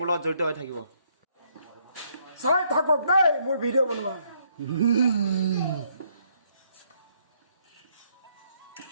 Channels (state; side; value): inverted; both; correlation -0.71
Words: লগত জড়িত হৈ থাকিব। চাই থাকক দেই মোৰ ভিডিঅ' বনোৱা।